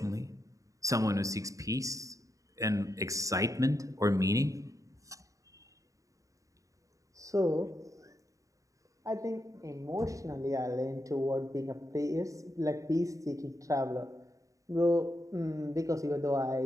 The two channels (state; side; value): late; left; 0.16 ms